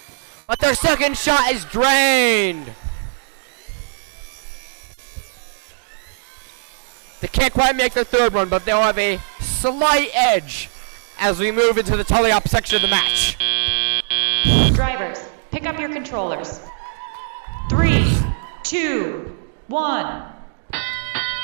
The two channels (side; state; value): left; silent; digital silence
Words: But their second shot is drained. They can't quite make their third one, but they'll have a slight edge as we move into the teleop section of the match. Drivers, pick up your controllers. 3, 2, 1.